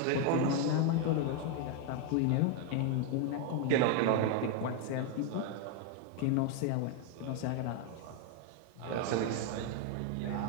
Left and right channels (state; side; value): different; both; correlation 0.01